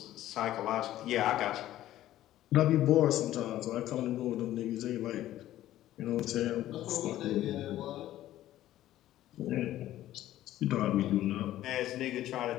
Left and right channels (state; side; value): quieter; right; 13.8 dB